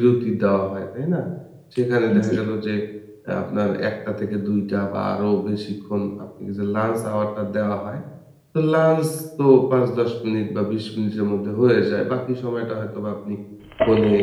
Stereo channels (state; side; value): identical; both; correlation 1.00